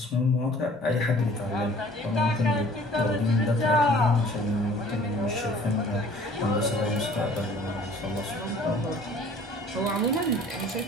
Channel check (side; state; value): both; normal; correlation 0.52